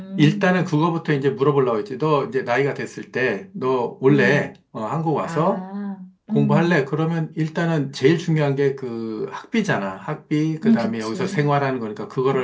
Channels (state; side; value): identical; both; correlation 1.00